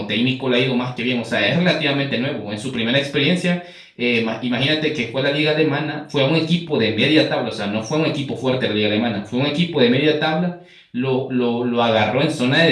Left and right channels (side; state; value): both; identical; correlation 1.00